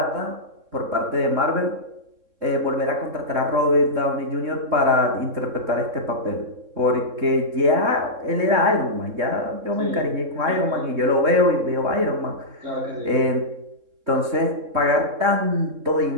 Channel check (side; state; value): left; late; 3.7 ms